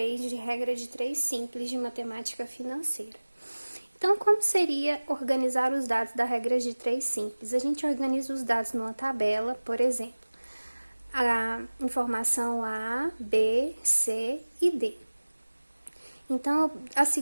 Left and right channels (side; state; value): both; inverted; correlation -1.00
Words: de regra de 3 simples de matemática financeira. Então, como seria organizar os dados da regra de 3 simples? A gente organiza os dados numa tabela, por exemplo, a informação A, B, C e D. Então, o